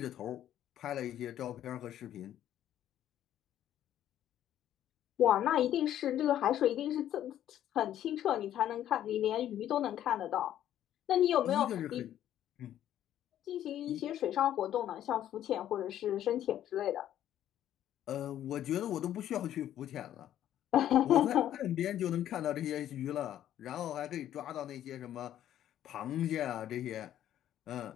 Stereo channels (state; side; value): quieter; right; 11.5 dB